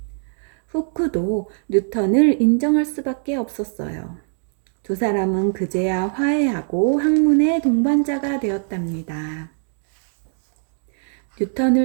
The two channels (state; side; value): silent; left; digital silence